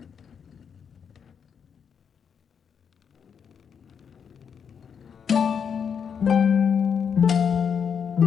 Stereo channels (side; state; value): right; quieter; 7.1 dB